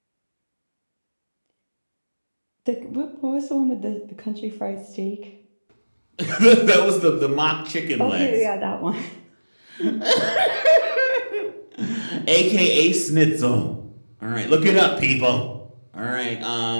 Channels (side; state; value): both; inverted; correlation -1.00